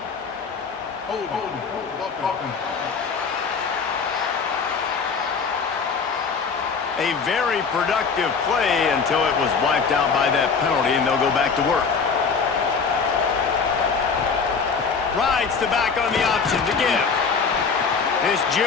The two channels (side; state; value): right; quieter; 5.4 dB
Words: A very productive play until it was wiped out by that penalty, and they'll go back to work. Rides the back on the option to give. This